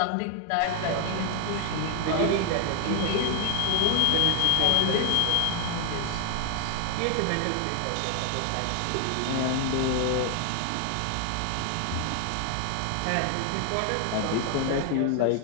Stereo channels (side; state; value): both; different; correlation 0.00